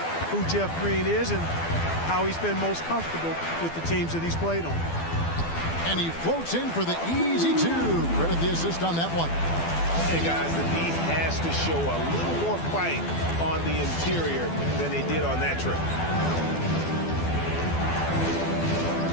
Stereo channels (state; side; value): late; right; 12 ms